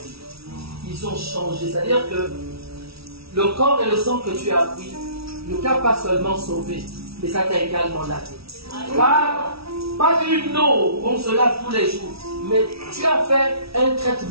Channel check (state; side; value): late; left; 0.76 ms